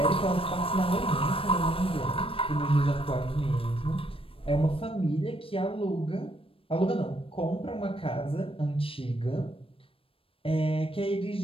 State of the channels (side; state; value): right; late; 0.27 ms